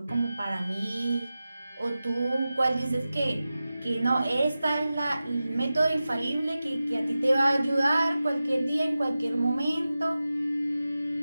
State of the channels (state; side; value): inverted; both; correlation -0.95